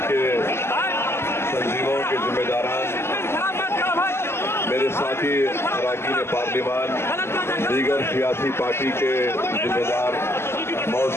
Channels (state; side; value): late; right; 0.12 ms